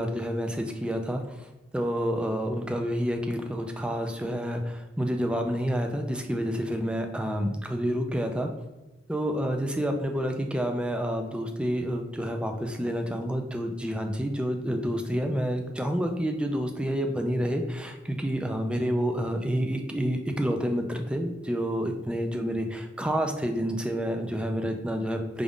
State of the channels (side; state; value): both; normal; correlation 0.86